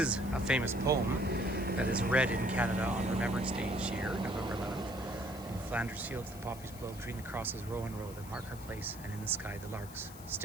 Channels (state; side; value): noise; left; hiss, 17 dB below the sound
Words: a famous poem that is read in Canada on Remembrance Day each year, November 11th. In Flanders fields the poppies blow, between the crosses row and row that mark our place, and in the sky the larks,